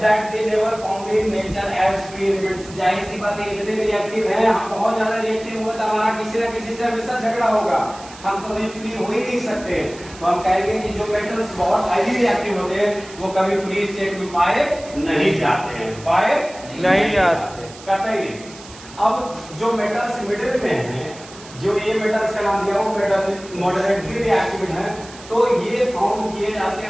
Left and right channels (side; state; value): right; noise; hiss, 18 dB below the sound